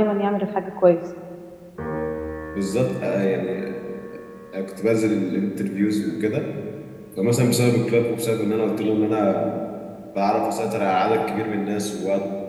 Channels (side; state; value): both; identical; correlation 1.00